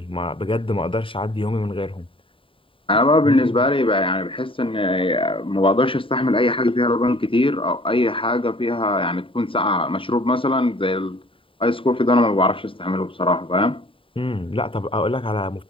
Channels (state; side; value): late; right; 0.25 ms